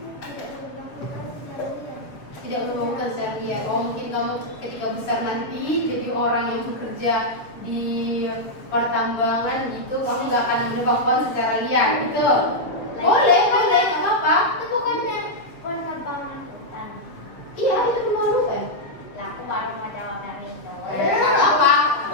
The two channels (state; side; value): late; right; 7.0 ms